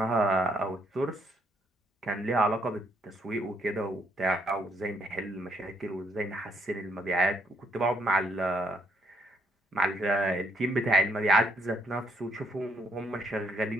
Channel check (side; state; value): both; normal; correlation 0.72